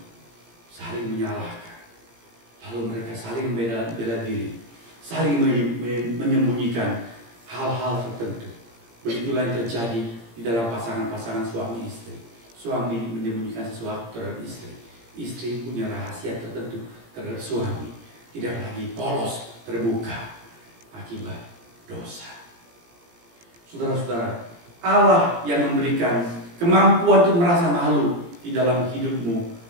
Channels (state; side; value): late; left; 17 ms